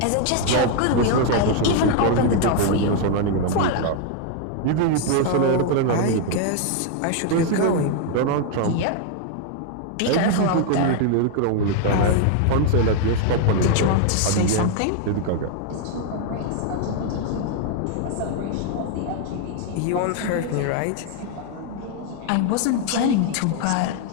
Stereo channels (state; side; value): different; both; correlation 0.00